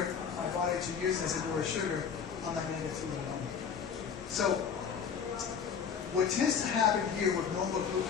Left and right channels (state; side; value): quieter; right; 6.8 dB